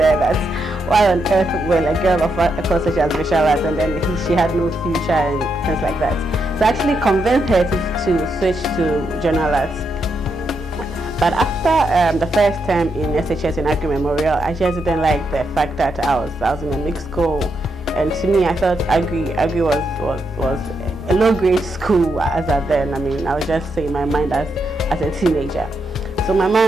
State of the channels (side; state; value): both; normal; correlation 0.81